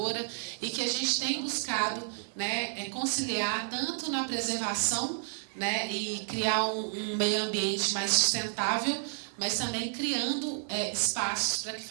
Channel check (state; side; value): silent; left; digital silence